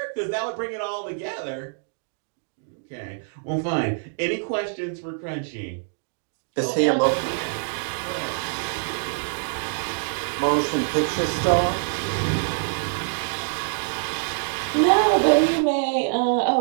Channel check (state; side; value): silent; left; 62 dB below the other